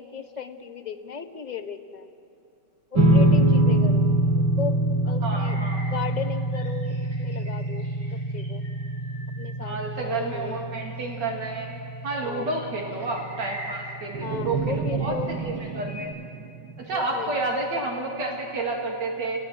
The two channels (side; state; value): left; late; 5.3 ms